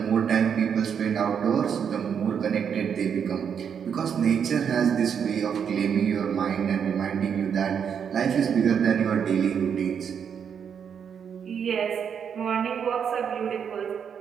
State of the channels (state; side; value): quieter; left; 7.5 dB